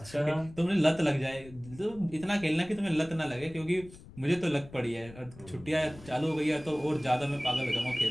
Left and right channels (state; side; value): noise; left; rumble, 19 dB below the sound